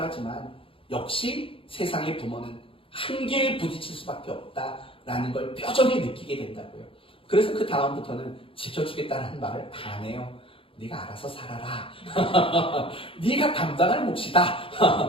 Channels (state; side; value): late; right; 0.26 ms